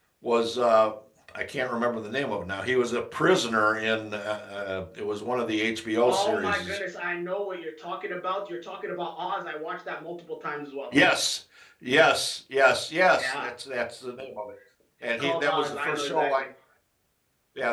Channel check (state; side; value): identical; both; correlation 1.00